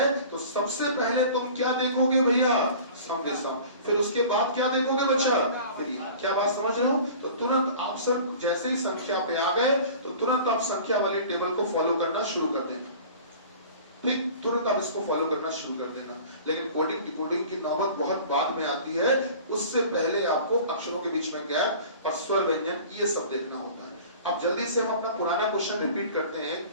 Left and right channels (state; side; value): inverted; both; correlation -0.43